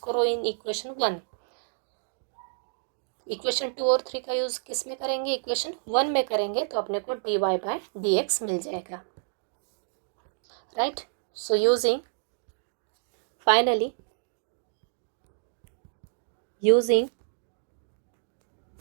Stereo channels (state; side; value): silent; left; digital silence